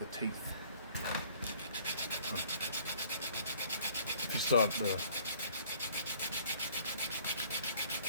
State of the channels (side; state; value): both; inverted; correlation -0.55